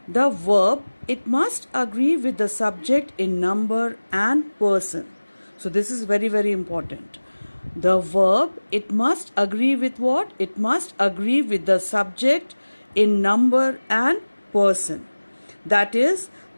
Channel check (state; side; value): inverted; both; correlation -1.00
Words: the verb it must agree with the subject in number and person. So this is very important. The verb it must agree with what? It must agree with the subject in number and person. That is,